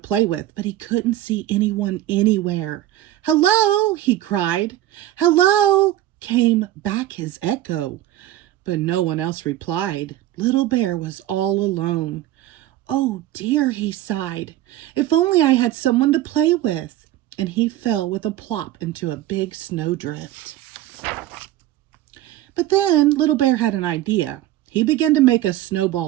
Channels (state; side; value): quieter; left; 14.2 dB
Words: with, but he couldn't see anyone anywhere. "Hello!" he cried. "Hello!" came back his echo. But no one else replied. Little Bear was all alone. "Oh dear," he sighed. "If only I had someone to play with." And he fell with a plop into a big snowdrift. But then Little Bear had an idea. He began to make a